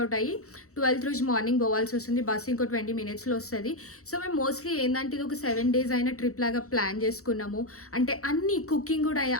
అవుట్ అయ్యి 12th రోజు మార్నింగ్ పోవాల్సి వస్తుంది. బస్ ఇంకో 20 minutesలో వస్తుంది. సో మేము మోస్ట్లీ ఏంటంటే ఇది ఒక 7 days అయిన ట్రిప్ లాగా ప్లాన్ చేసుకున్నాము. అంటే అన్ని కుకింగ్ కూడా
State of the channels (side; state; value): right; late; 0.64 ms